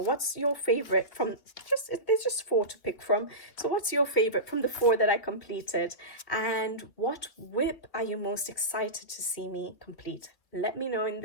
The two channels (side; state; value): right; late; 2.6 ms